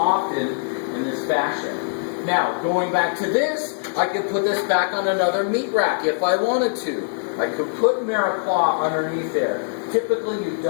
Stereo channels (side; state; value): right; silent; digital silence